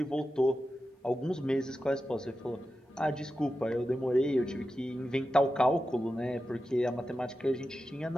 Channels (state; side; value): normal; both; correlation 0.91